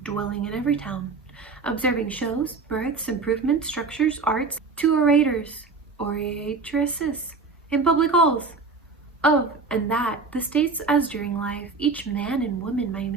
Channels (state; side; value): quieter; left; 4.3 dB